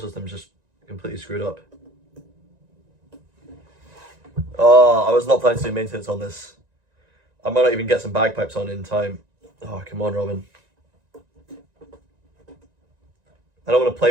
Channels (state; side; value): late; left; 1.9 ms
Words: just completely screwed up. Oh, I was not planning to do maintenance on this. I might not even get some bagpipes on in time. Oh, come on, Robin. I don't want to